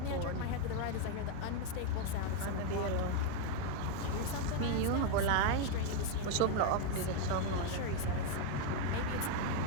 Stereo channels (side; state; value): both; different; correlation 0.01